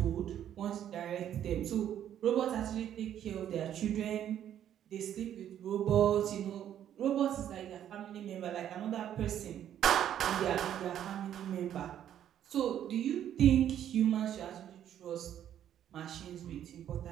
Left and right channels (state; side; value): quieter; left; 10.5 dB